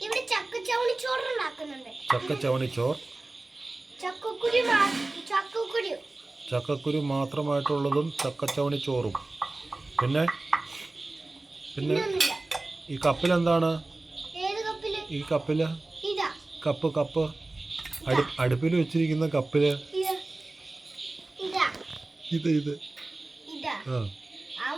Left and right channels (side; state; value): left; quieter; 3.0 dB